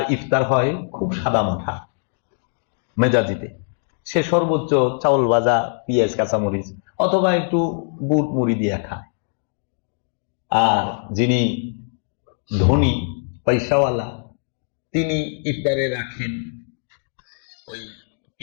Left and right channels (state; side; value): silent; right; digital silence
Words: ইফতার হয় খুব সাদা মাথা মেজাজিতে, সে সর্বোচ্চ চাউল ভাজা, পেঁয়াজ, কাঁচামরিচ অথবা একটু বুট মুড়ি দিয়ে খায়। আর যিনি ধনী, পয়সাওয়ালা, তিনি ইফতারে রাখেন ওই